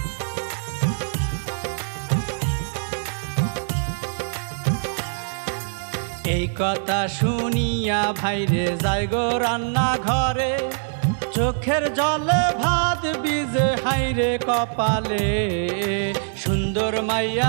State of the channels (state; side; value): silent; left; digital silence